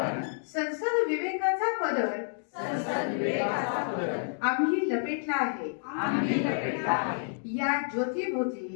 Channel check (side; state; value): right; silent; digital silence